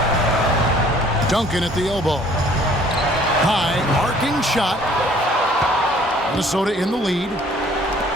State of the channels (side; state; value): both; normal; correlation 0.56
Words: Duncan at the elbow. High, arcing shot. Minnesota in the lead.